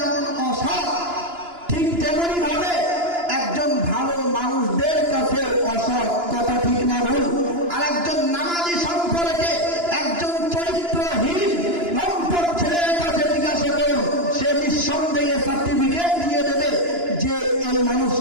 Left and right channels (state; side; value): late; left; 2.9 ms